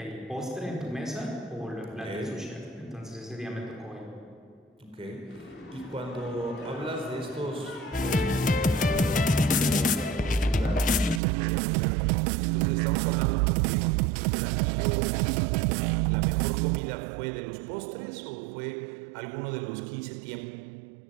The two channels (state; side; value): drops out; left; at 11.2 s